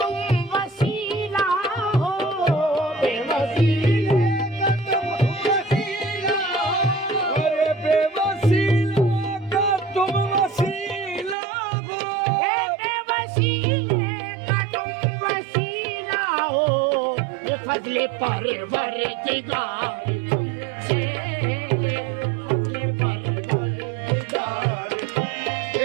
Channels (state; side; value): drops out; left; at 11.4 s